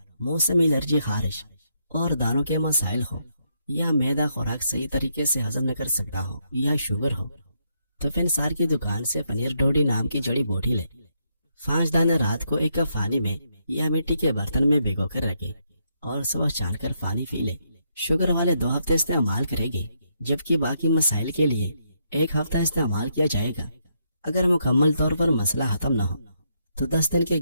موسمی الرجی، خارش اور دانوں کے مسائل ہو، یا معدہ خوراک صحیح طریقے سے ہضم نہ کر سکتا ہو، یا شوگر ہو، تو فنسار کی دکان سے پنیر ڈوڈی نام کی جڑی بوٹی لے۔ 5 دانے رات کو ایک کپ پانی میں یا مٹی کے برتن میں بھگو کر رکھے اور صبح چھان کر پانی پی لے۔ شوگر والے 2 ہفتے استعمال کریں گے، جبکہ باقی مسائل کے لیے 1 ہفتہ استعمال کیا جائے گا۔ اگر مکمل طور پر مسئلہ ختم نہ ہو تو 10 دن کے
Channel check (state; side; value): inverted; both; correlation -0.77